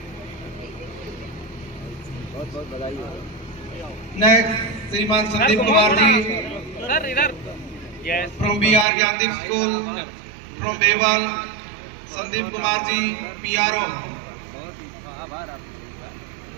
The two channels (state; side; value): drops out; left; at 8.8 s